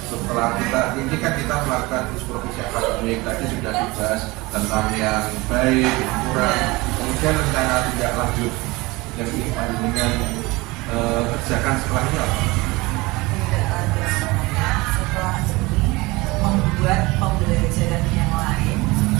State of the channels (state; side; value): quieter; left; 22.8 dB